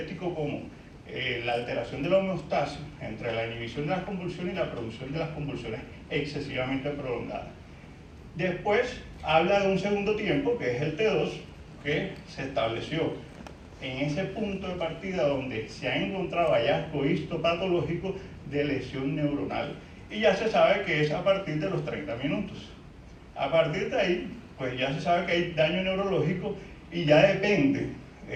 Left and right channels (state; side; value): identical; both; correlation 1.00